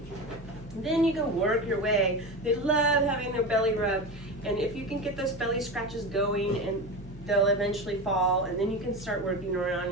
Then you can work your way. They love having their belly rubbed. And if you can get those belly scratches going, and they'll eventually fall, and then you can start working around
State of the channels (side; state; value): both; normal; correlation 0.24